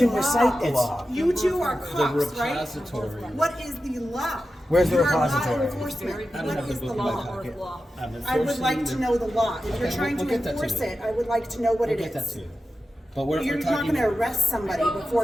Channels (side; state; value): both; normal; correlation 0.92